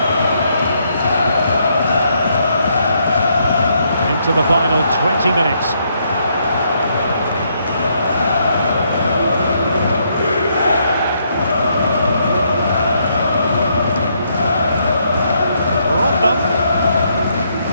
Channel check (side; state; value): both; inverted; correlation -0.74